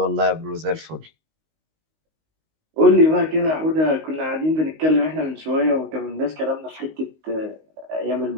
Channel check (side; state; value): left; late; 19 ms